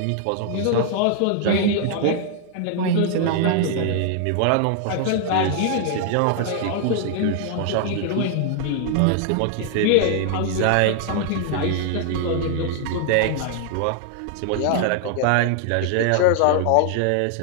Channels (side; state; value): both; different; correlation 0.00